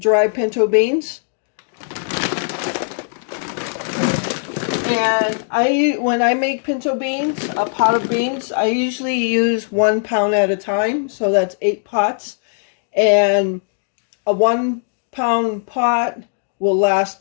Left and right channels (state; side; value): silent; right; digital silence